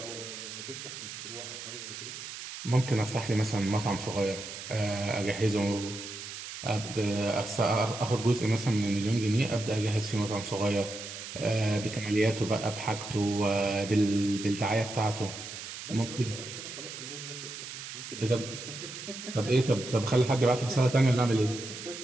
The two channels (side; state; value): right; noise; hiss, 10 dB below the sound